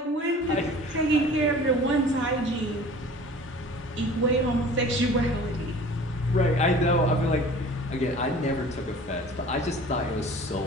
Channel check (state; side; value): normal; both; correlation 0.44